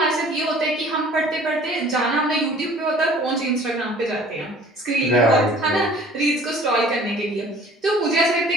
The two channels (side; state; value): both; normal; correlation 0.50